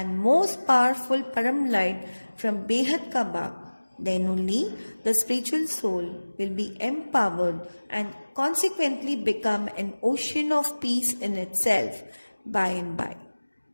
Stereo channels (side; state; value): both; inverted; correlation -1.00